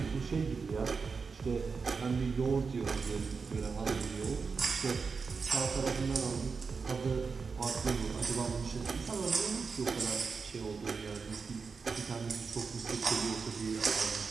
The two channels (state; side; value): quieter; left; 5.0 dB